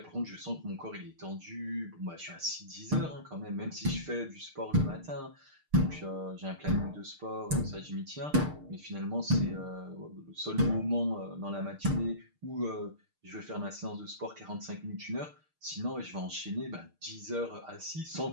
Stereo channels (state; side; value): late; left; 6.6 ms